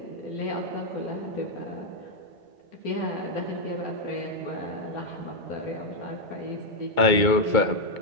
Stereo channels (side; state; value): right; late; 2.2 ms